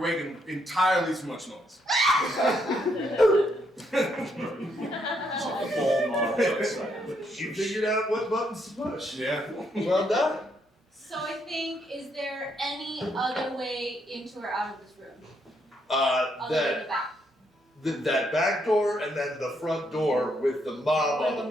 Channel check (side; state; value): both; normal; correlation 0.75